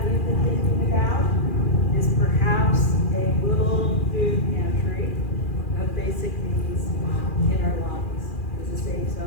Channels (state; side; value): late; right; 2.4 ms